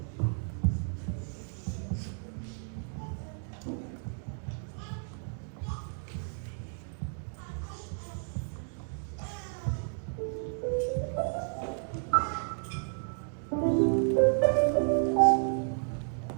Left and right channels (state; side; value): silent; left; 56 dB below the other